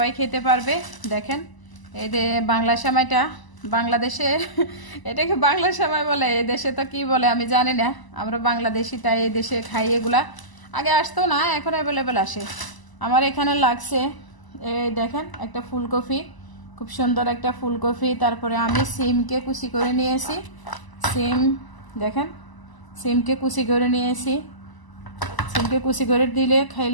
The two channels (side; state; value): right; late; 1.0 ms